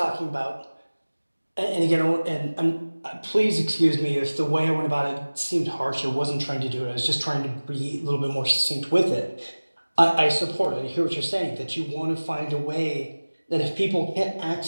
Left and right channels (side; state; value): both; inverted; correlation -1.00